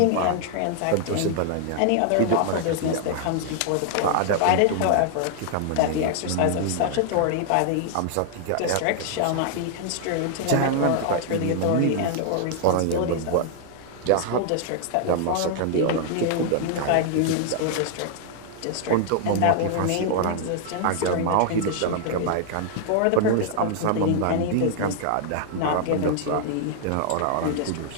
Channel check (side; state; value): both; different; correlation 0.00